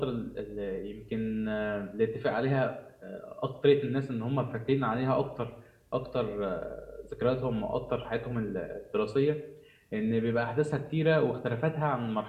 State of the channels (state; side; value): identical; both; correlation 1.00